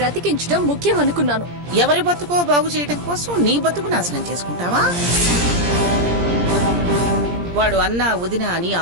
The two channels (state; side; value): late; left; 17 ms